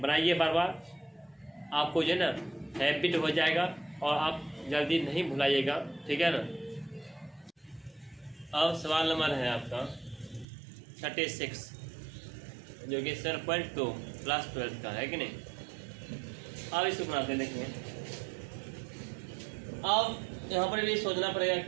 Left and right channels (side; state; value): left; drops out; at 10.5 s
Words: बार बार, आपको जो है ना हैबिट हो जाएगा और आप जल्दी नहीं भुलाइएगा, ठीक है ना। अब सवाल नंबर है आपका 36, जो कि 7.2 क्लास 12 का है कि नहीं। अब इसको बनाते हैं, देखिए। अब यहाँ पर भी सोचना पड़ेगा